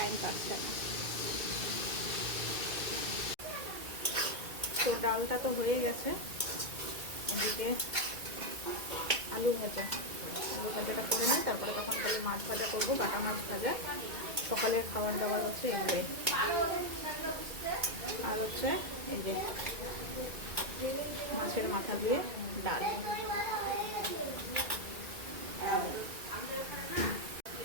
পাচ্ছে। তো ডালটা তো হয়ে গেছে, এদিকে আলু ভাজাটা করে নিই, তারপরে তখন খালি মাছ ভাজা করবো, বাটা মাছ ভাজা। সকালের খাবার দাবার হচ্ছে এগুলোই। আর হচ্ছে এই যে মাছের মাথা দিয়ে ডাল।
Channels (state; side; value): late; left; 2.2 ms